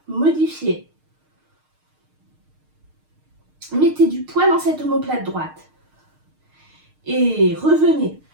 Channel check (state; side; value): late; left; 6.5 ms